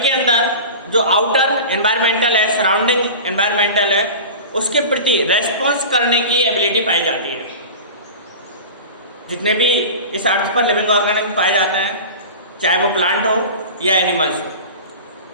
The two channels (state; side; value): inverted; both; correlation -0.33